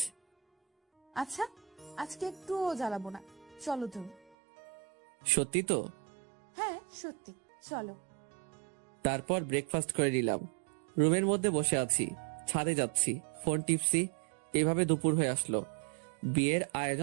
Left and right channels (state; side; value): drops out; left; at 4.4 s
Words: আচ্ছা, আজকে একটুও জ্বালাবো না, চলো তুমি। সত্যি তো? হ্যাঁ সত্যি, চলো। তারপর ব্রেকফাস্ট করে নিলাম। রুমের মধ্যে বসে আছি, ছাদে যাচ্ছি, ফোন টিপছি। এভাবে দুপুর হয়ে আসলো। বিয়ের